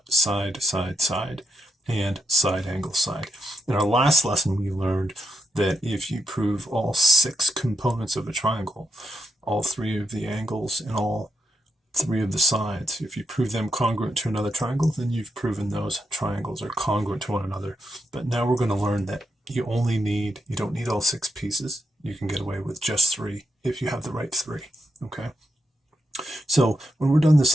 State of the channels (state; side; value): normal; both; correlation 0.83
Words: side, side, side, and side angle side. In our last lesson, we learned that if you prove all 6 components of a triangle, all 3 of the angles and all 3 of the sides, if you prove them congruent to another triangle, then you've proven those triangles are congruent to one another. But now we're going to learn that you don't need all 6 pieces. You can get away with just 3 if you have the right 3. Okay, so when we're done this